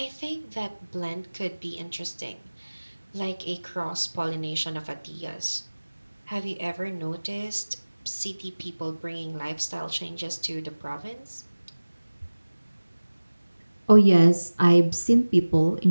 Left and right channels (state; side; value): inverted; both; correlation -1.00